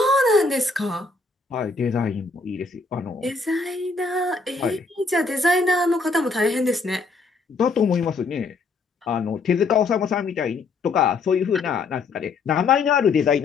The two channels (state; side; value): quieter; right; 4.0 dB